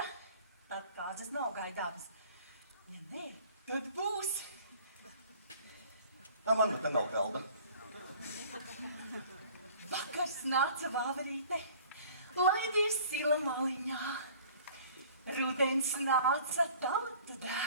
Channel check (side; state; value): both; inverted; correlation -0.50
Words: tad kāzas nav gaidāmas. Ja nē, tad būs. Man nu te nav galda. Vakars nāca vāverīte, laidies sila maliņā. Rudens nāca tautu